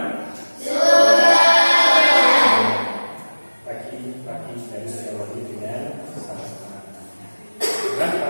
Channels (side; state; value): both; inverted; correlation -1.00